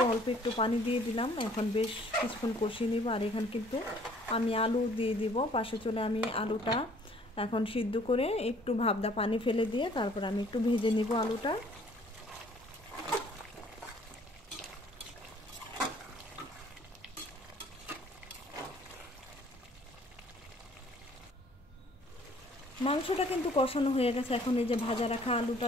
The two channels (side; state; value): both; normal; correlation 0.58